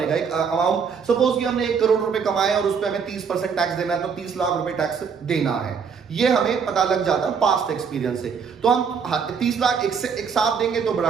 एक अमाउंट सपोज कि हमने 1 करोड़ रुपए कमाए और उस पे हमें 30% टैक्स देना है, तो 30 लाख रुपए टैक्स देना है, ये हमें पता लग जाता है पास्ट एक्सपीरियंस से। तो हम 30 लाख एक साथ देंगे तो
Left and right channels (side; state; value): left; quieter; 6.2 dB